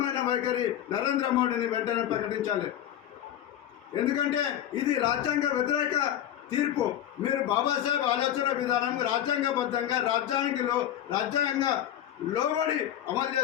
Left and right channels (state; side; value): quieter; right; 11.3 dB